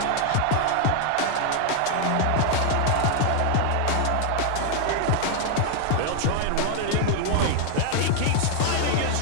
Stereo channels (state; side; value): different; both; correlation 0.00